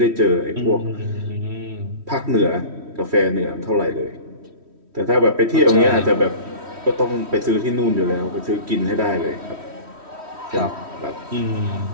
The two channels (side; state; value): left; late; 3.1 ms